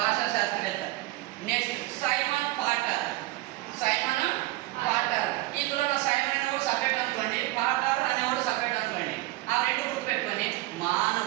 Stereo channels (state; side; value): quieter; left; 18.9 dB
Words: శాస్త్రవేత్త. Next Simon Potter. ఇందులో సైమన్ అనేవాడు సపరేట్ అనుకోండి, పాటర్ అనేవాడు సపరేట్ అనుకోండి. ఆ రెండు గుర్తుపెట్టుకొని